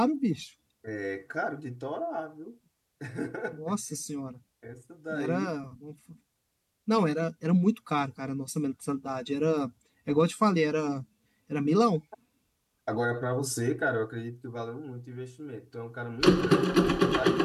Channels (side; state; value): both; identical; correlation 1.00